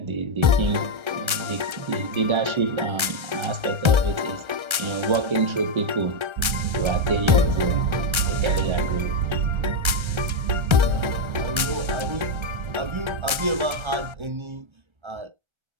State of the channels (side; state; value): left; late; 1.3 ms